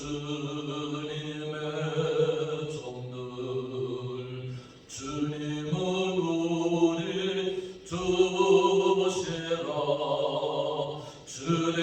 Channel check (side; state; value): both; identical; correlation 1.00